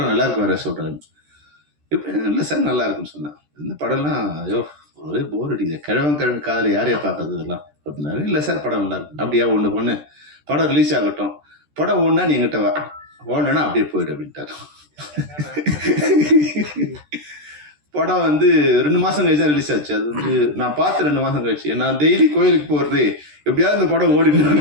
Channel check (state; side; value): late; left; 13 ms